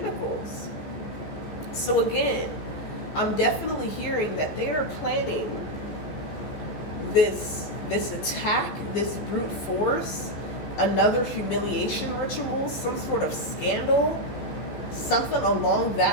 So again, I'm definitely hearing that they are planning this attack, this brute force, another humiliation ritual, some sort of scandal, something along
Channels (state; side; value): late; right; 15 ms